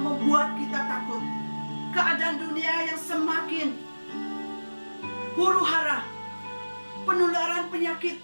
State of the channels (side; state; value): both; inverted; correlation -1.00